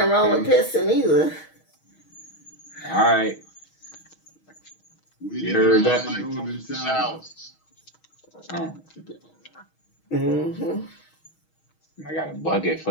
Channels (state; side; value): late; right; 6.3 ms